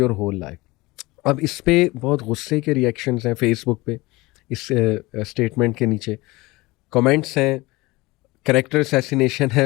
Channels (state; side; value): quieter; right; 21.7 dB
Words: your whole life. اب اس پہ بہت غصے کے reactions ہیں face بک پہ، اس statement کے نیچے comments ہیں، کریکٹر اسیسینیشن